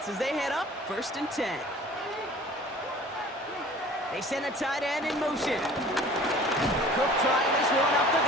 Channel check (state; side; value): normal; both; correlation 0.47